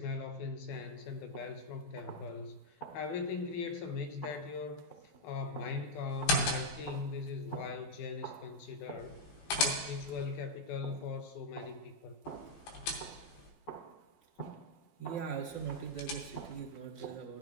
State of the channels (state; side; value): late; right; 12 ms